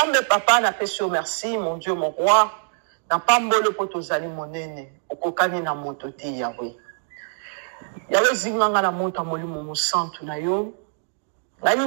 papa na pesio merci mon Dieu mon roi na pambolo poto zali monene okokani na moto te Yahweh. Yahweh zinganga na moto molimo musantu na yo.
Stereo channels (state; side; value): silent; left; digital silence